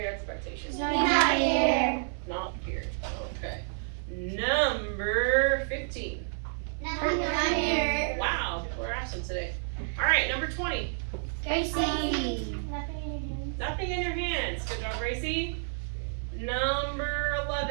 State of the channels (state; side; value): silent; left; digital silence